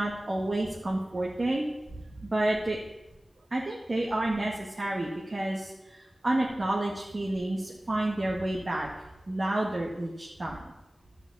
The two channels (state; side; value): normal; both; correlation 0.97